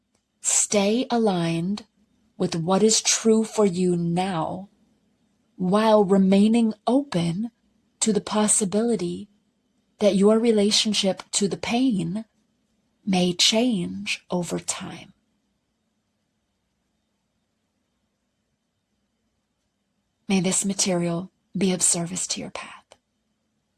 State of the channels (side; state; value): both; identical; correlation 1.00